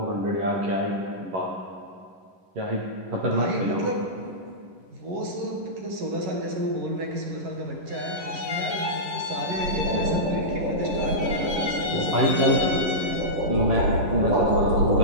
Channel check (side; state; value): left; late; 11 ms